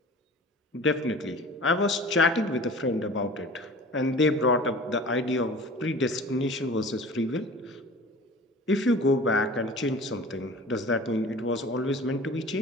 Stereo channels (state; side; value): normal; both; correlation 0.41